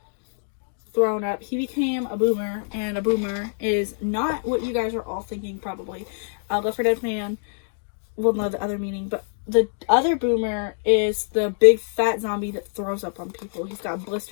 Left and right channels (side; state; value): right; silent; digital silence